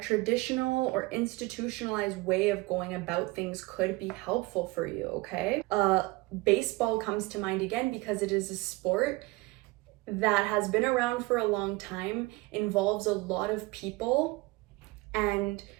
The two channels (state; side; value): quieter; left; 22.5 dB